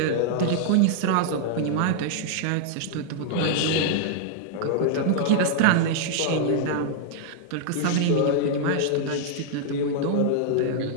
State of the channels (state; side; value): different; both; correlation 0.00